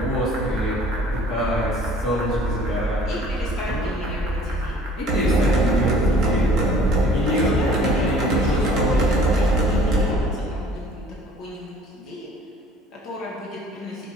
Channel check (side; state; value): both; normal; correlation 0.52